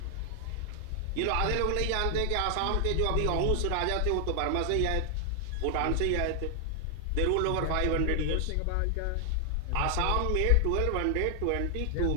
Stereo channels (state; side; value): different; both; correlation 0.00